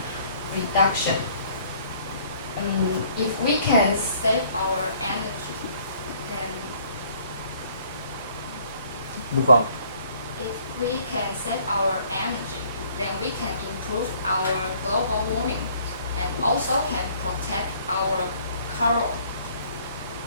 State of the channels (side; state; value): both; inverted; correlation -0.59